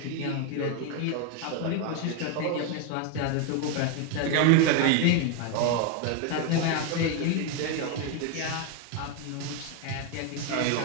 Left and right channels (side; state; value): both; different; correlation 0.01